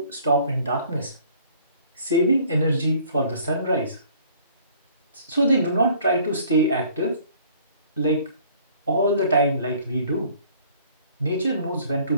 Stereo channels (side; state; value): both; inverted; correlation -0.56